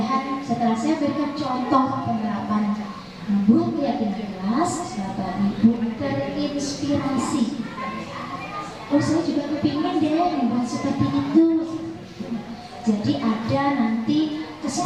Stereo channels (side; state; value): both; identical; correlation 1.00